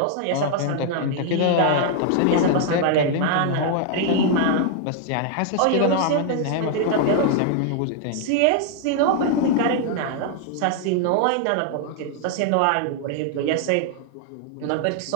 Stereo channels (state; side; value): different; both; correlation 0.00